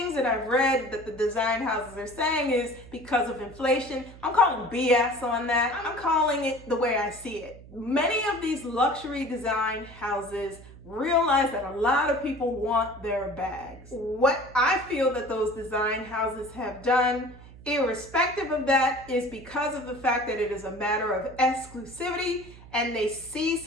that I've read that the design houses are saying is because of inflation, I'm calling BS on that. I'm calling it the way I see it. Many of these luxury design houses realize that a lot of people want their bags. What I feel that those design houses have done, irrespective of that, is because of the fact that it is a matter of exclusivity and they see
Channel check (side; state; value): right; noise; hum, 19 dB below the sound